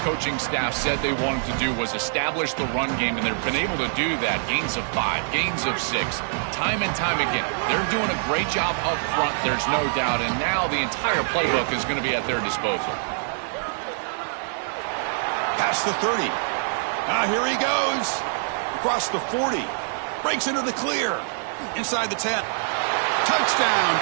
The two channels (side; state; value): left; silent; digital silence